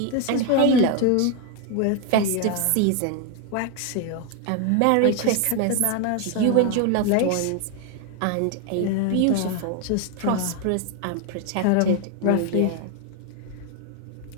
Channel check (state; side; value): different; both; correlation 0.01